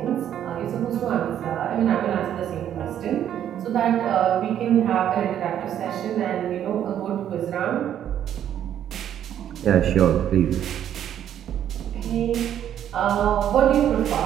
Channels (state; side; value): quieter; left; 10.3 dB